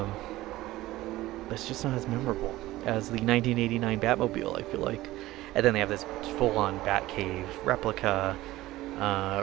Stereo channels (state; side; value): quieter; left; 17.0 dB